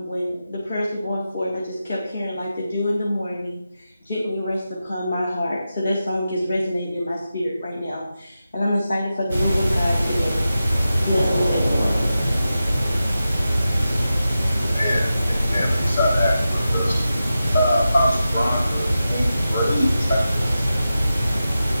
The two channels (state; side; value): inverted; both; correlation -0.91